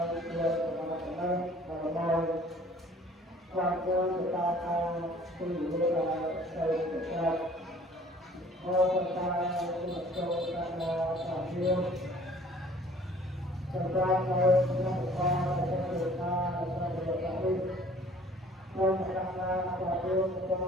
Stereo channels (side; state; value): both; normal; correlation 0.53